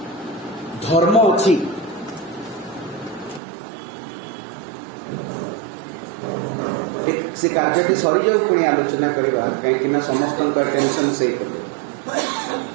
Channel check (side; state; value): left; drops out; at 3.4 s